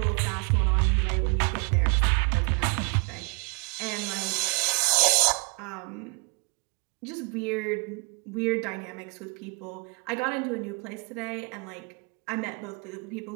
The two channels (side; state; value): left; quieter; 32.7 dB